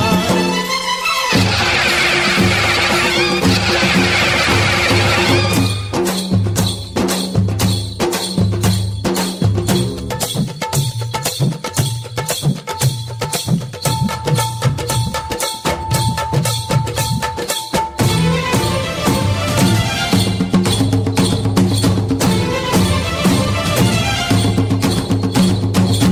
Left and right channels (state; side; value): identical; both; correlation 1.00